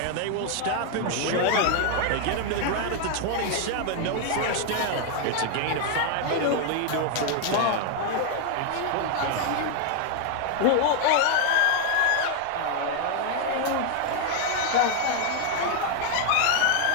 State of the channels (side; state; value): both; different; correlation 0.00